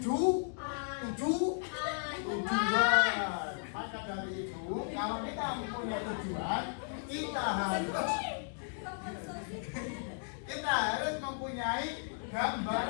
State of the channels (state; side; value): silent; right; digital silence